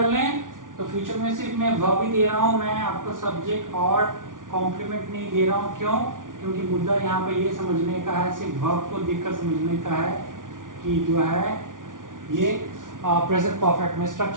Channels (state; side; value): late; left; 0.88 ms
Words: लें तो फ्यूचर में सिर्फ मैं वर्ब ही दे रहा हूं, मैं आपको सब्जेक्ट और कॉम्प्लीमेंट नहीं दे रहा हूं। क्यों, क्योंकि मुद्दा यहाँ पे ये समझने का है, सिर्फ वर्ब को देखकर समझने का है कि जो है ये प्रेजेंट परफेक्ट में